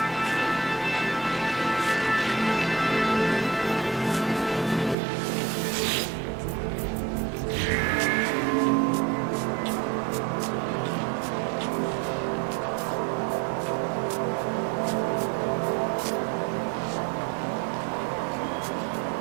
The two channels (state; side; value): drops out; left; at 5.0 s